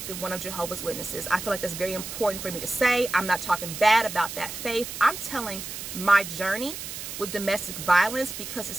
one of Jehovah's Witnesses. I feel like that's very important for me to say. I'm not talking bad about that faith. I'm telling my journey with domestic violence because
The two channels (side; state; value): right; noise; hiss, 8 dB below the sound